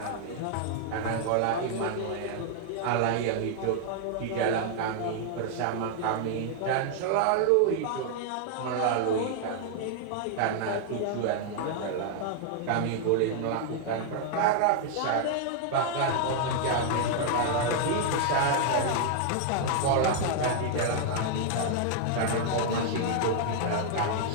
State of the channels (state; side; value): different; both; correlation 0.00